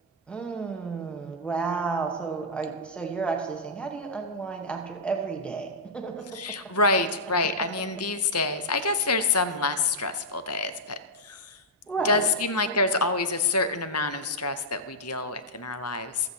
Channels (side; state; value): both; normal; correlation -0.09